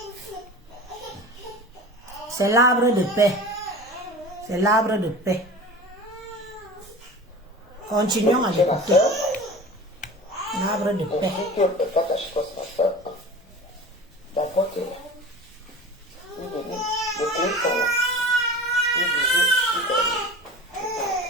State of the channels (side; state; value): both; normal; correlation 0.37